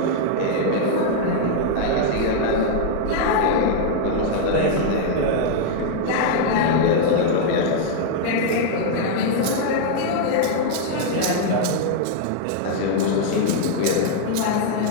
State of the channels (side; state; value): both; different; correlation 0.00